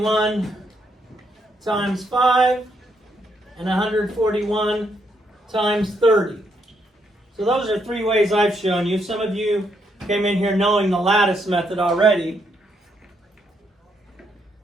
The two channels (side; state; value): both; normal; correlation 0.76